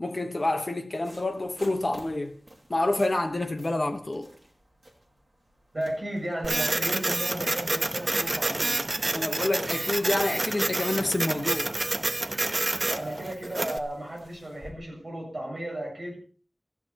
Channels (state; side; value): normal; both; correlation 0.97